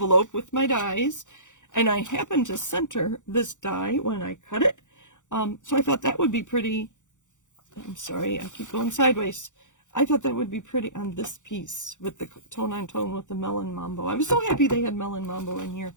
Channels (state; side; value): late; right; 0.85 ms